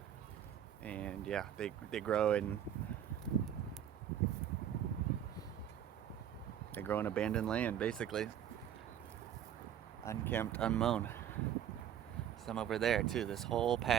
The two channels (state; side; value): quieter; left; 10.0 dB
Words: And yeah, they grow in abandoned land, basically. Unkempt, unmown. Some over there too, this whole